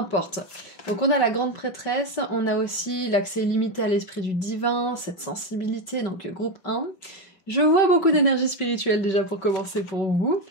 Donc on a la grande prêtresse, on a aussi l'accès illimité à l'esprit du divin, cette sensibilité, donc groupe 1. Je vois beaucoup d'énergie spirituelle déjà pour commencer pour vous.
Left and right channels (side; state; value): right; late; 5.3 ms